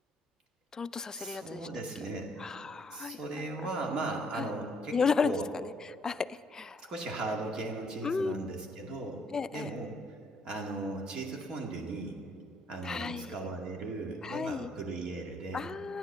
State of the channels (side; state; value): both; normal; correlation 0.67